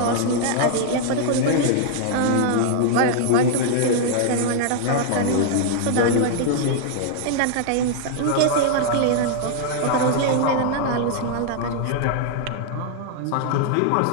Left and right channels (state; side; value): different; both; correlation 0.00